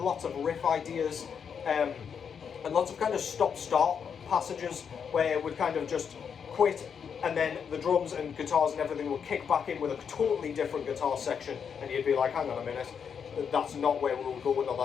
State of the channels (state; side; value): quieter; right; 7.0 dB